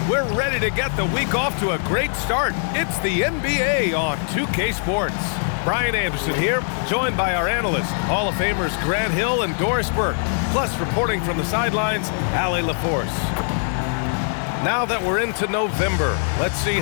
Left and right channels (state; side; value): silent; right; 62 dB below the other